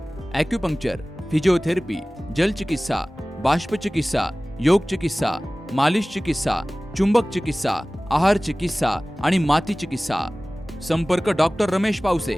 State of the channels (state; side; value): normal; both; correlation 0.98